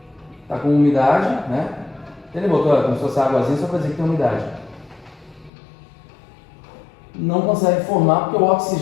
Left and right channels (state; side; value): drops out; right; at 5.5 s